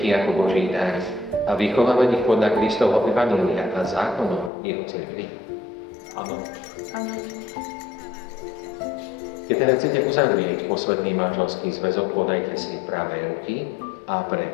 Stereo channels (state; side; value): drops out; right; at 4.5 s